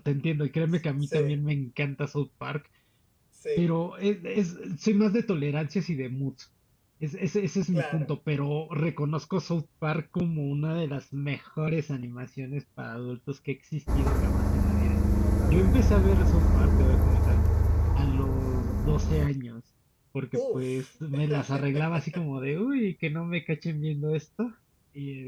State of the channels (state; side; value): identical; both; correlation 1.00